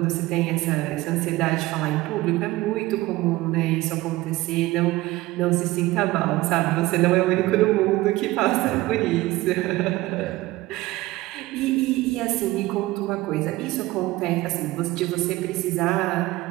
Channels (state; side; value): quieter; left; 18.7 dB